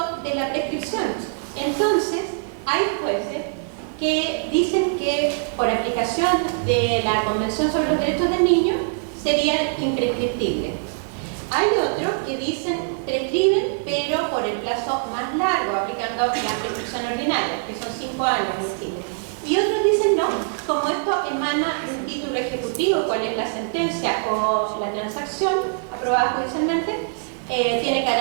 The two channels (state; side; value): silent; left; digital silence